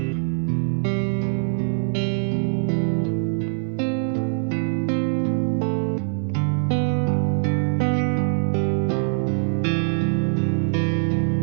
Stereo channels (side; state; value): left; silent; 60 dB below the other